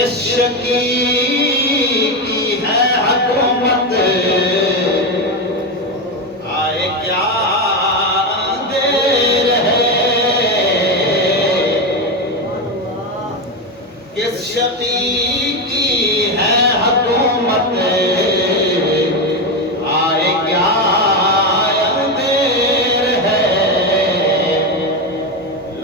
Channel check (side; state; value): both; normal; correlation 0.13